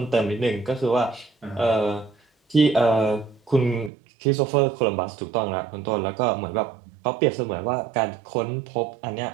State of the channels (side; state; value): left; drops out; at 3.9 s